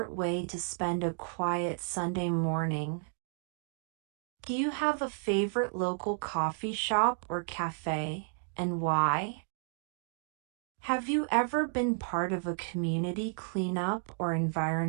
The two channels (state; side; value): silent; left; 56 dB below the other